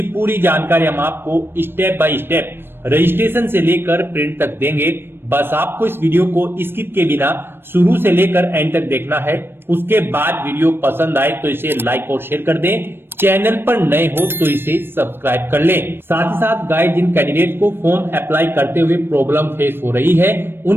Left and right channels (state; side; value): late; left; 0.10 ms